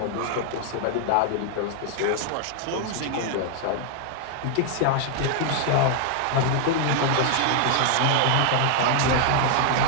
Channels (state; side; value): different; both; correlation 0.00